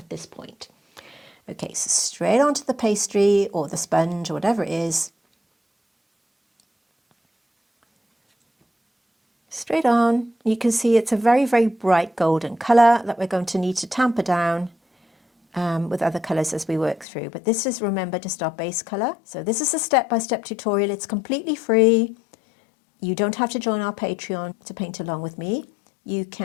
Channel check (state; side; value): drops out; right; at 17.1 s